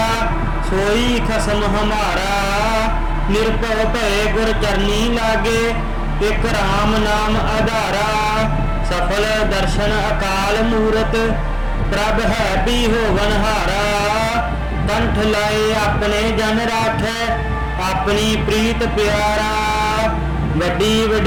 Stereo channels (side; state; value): both; identical; correlation 1.00